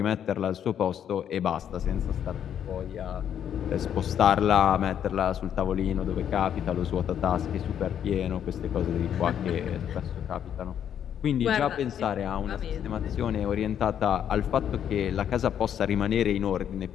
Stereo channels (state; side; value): quieter; right; 9.3 dB